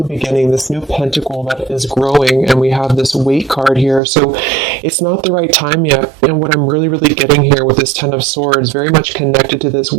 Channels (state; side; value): drops out; left; at 4.0 s